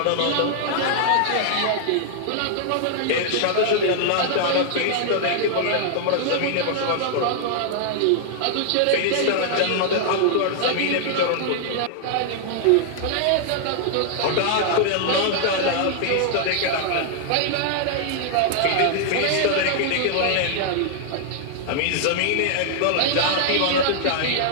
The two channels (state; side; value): different; both; correlation -0.01